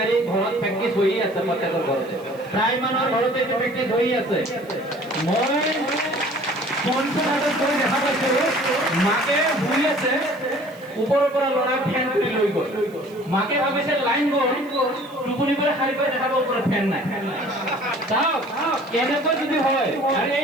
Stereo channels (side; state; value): right; noise; hiss, 27 dB below the sound